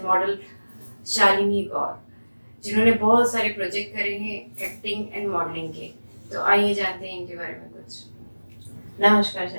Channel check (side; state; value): both; inverted; correlation -1.00